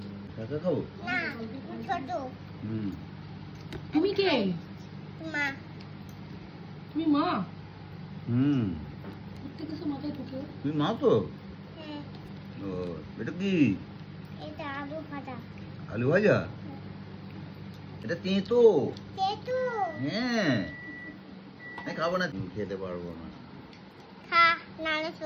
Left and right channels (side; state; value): both; identical; correlation 1.00